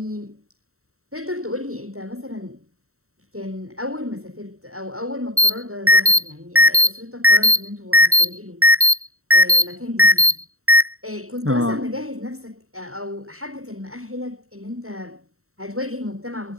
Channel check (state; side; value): late; left; 0.63 ms